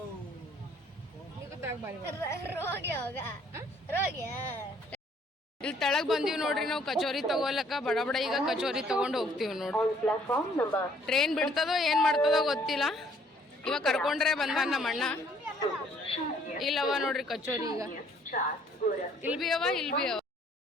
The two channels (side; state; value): both; normal; correlation 0.62